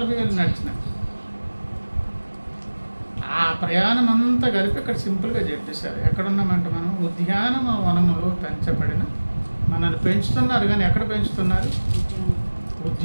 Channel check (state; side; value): inverted; both; correlation -1.00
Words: ఏళ్ళు నడిచినా ఆ ప్రయాణం అంతా కలిపి ఇక్కడ సింపుల్గా చెప్పేశారు. ఎక్కడున్నామంటే మనం ఉద్యానవనములో పెంచబడిన, మనల్ని పెంచుతున్నారు కానీ ఎక్కడ పెంచుతున్నారు?